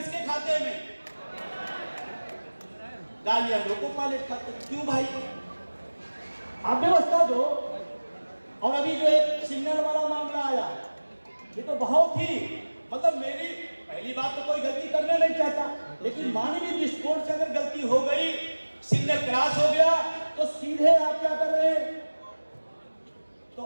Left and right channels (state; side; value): inverted; both; correlation -1.00